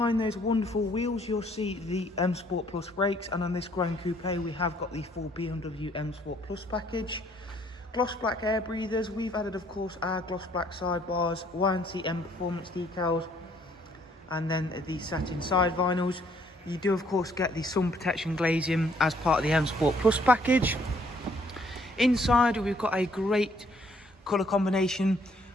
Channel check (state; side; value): normal; both; correlation 0.64